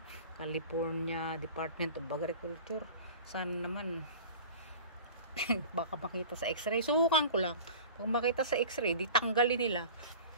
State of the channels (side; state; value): both; inverted; correlation -0.39